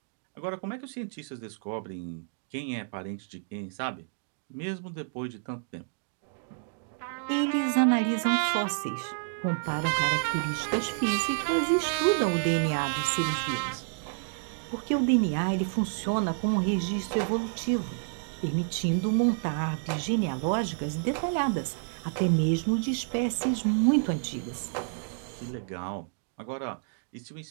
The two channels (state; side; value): silent; left; digital silence